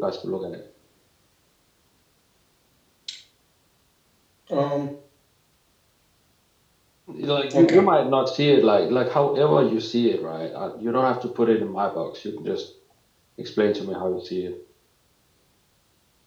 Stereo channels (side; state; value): both; identical; correlation 1.00